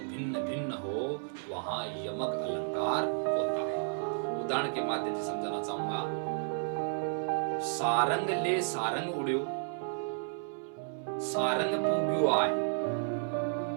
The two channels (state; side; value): silent; left; 56 dB below the other